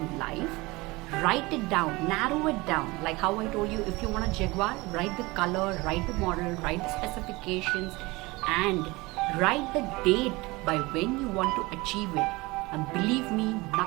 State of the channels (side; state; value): left; quieter; 22.8 dB